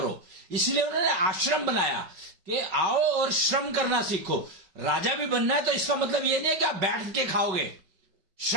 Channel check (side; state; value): left; late; 5.3 ms